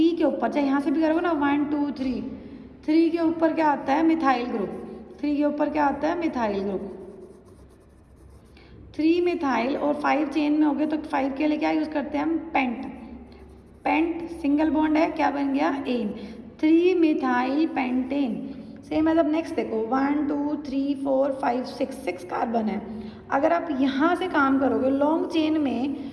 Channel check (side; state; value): both; identical; correlation 1.00